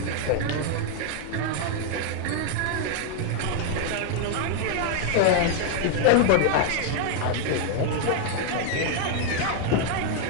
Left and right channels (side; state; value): both; different; correlation 0.01